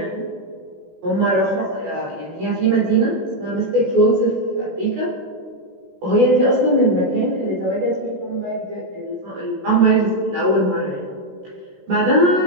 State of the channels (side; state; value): left; late; 16 ms